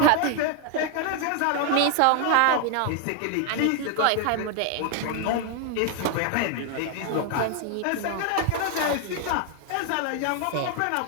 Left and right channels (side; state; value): both; different; correlation 0.01